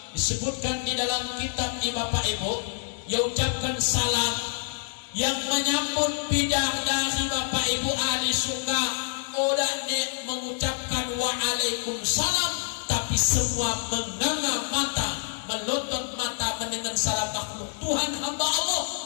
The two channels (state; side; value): silent; right; digital silence